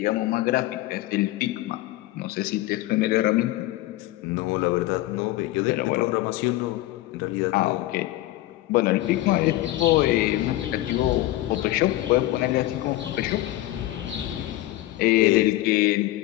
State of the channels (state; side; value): quieter; right; 16.7 dB